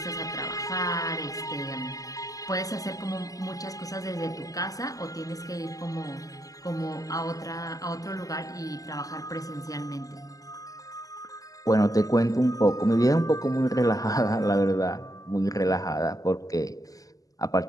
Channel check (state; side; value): late; right; 0.17 ms